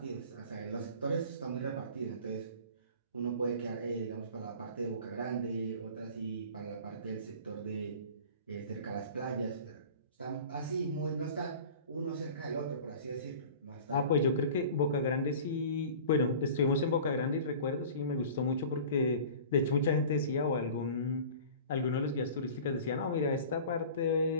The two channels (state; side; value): inverted; both; correlation -0.41